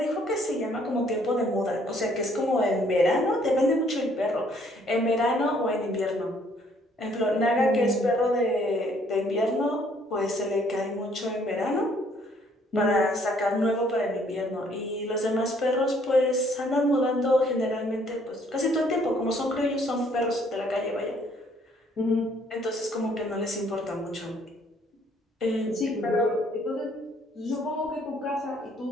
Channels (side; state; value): both; normal; correlation 0.63